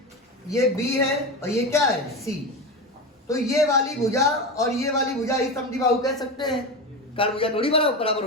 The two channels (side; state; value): both; normal; correlation 0.21